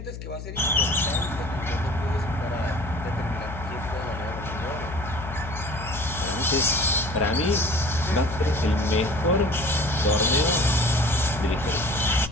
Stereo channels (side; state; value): left; noise; hum, 10 dB below the sound